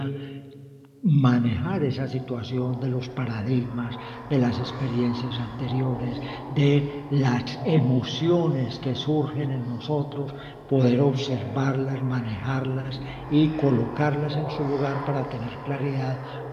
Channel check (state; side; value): identical; both; correlation 1.00